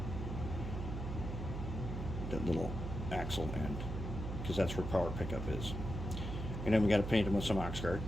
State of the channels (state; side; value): noise; right; hum, 5 dB below the sound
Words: axle end. because that's where power pickup is. And then we got to paint them with some Oxguard,